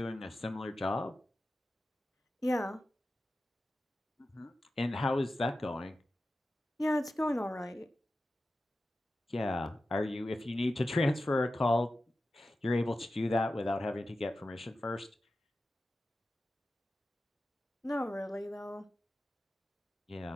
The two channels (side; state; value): both; normal; correlation 0.93